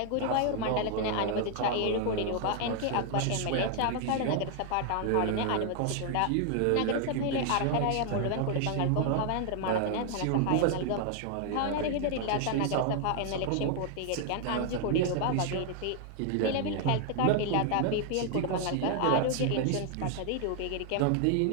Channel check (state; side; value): different; both; correlation 0.00